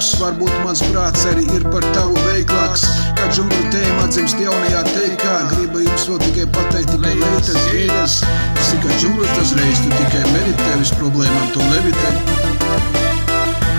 varbūt mans prāts arī ir par tavu veiklāks. Kā džungļu tēma atzimst jaunajā teikā, gribu jums vēl tikai pateikt, tikai leitas gēļas. Tas ir kā džungļos dažreiz, tu tikai meditē, uz problēmām tu levitē.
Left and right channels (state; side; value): inverted; both; correlation -1.00